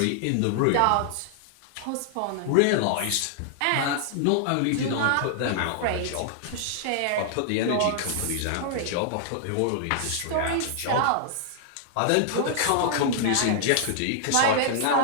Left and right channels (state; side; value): different; both; correlation -0.01